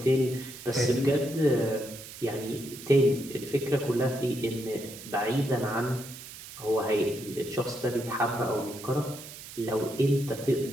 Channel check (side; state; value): right; noise; hiss, 14 dB below the sound